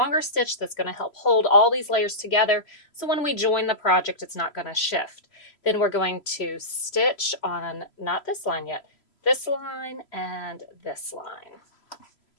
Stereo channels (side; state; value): right; late; 3.0 ms